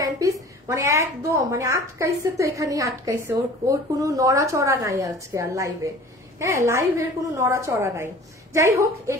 পিস, মানে একদম মানে আটকাইছে তো, এখানেই আটকাইছে, ওর কোনো নড়াচড়া নাই আজকে আর লাইভে। হ্যাঁ লাইভের কোনো নড়াচড়া নাই। যাই হোক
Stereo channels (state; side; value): normal; both; correlation 0.44